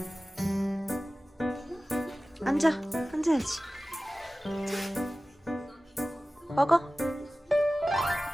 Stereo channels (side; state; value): both; normal; correlation 0.96